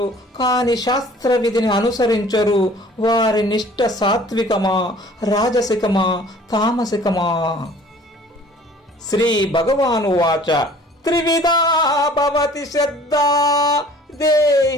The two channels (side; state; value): both; normal; correlation 0.50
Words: కాని శాస్త్ర విధిని అనుసరించరు. వారి నిష్ఠ సాత్వికమా, రాజసికమా, తామసికమా? శ్రీ భగవాను వాచ త్రివిధా భవతి శ్రద్ధా